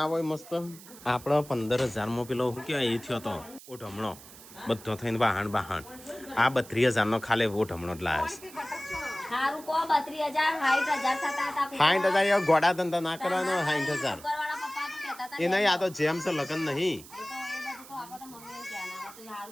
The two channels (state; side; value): noise; right; hiss, 18 dB below the sound